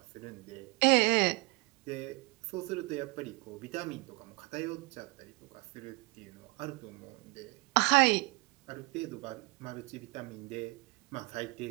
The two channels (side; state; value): left; quieter; 25.5 dB